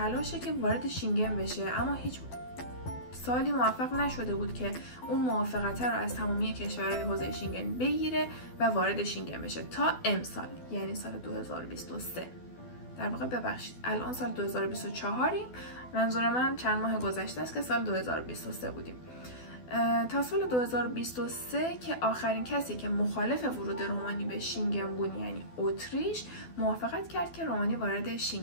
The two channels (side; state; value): right; late; 12 ms